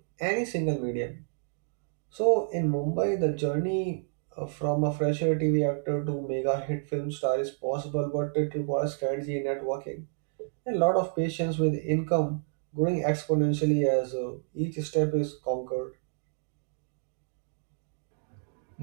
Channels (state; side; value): silent; left; digital silence